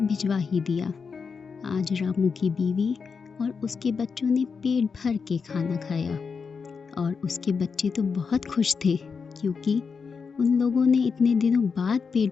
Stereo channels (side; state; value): right; quieter; 5.5 dB